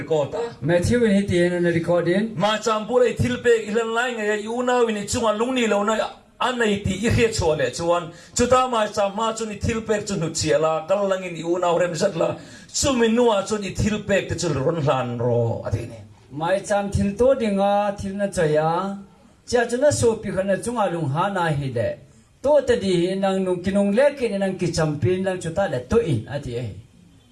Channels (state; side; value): identical; both; correlation 1.00